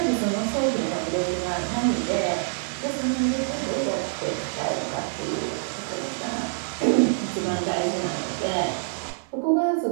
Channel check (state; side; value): silent; left; 61 dB below the other